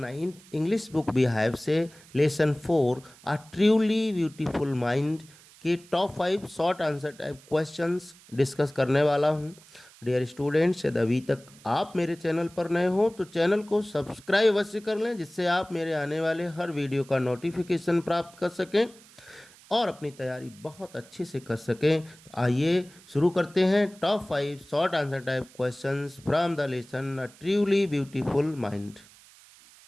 English book Beehive से lesson 4 a truly beautiful mind के top 5 short answer type questions discuss करने वाला हूं। डियर स्टूडेंट्स, यदि अभी तक आप मेरे चैनल पर नए हो तो चैनल को सब्सक्राइब अवश्य कर लें, जिससे आप मेरे आने वाले हर वीडियो का नोटिफिकेशन प्राप्त कर सकें और अपनी तैयारी बहुत अच्छे से कर सकें। तो आइए शुरू करते हैं top 5 short answer type questions from the lesson a truly beautiful mind.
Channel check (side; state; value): right; noise; hiss, 24 dB below the sound